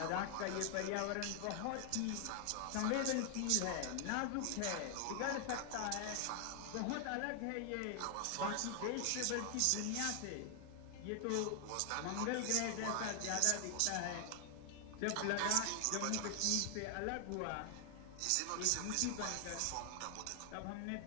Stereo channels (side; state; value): both; different; correlation 0.00